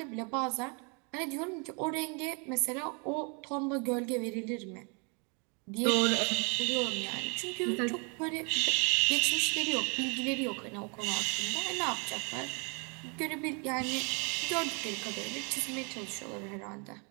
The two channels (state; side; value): quieter; left; 34.5 dB